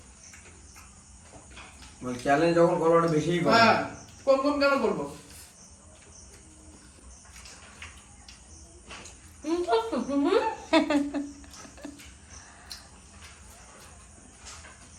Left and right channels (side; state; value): both; identical; correlation 1.00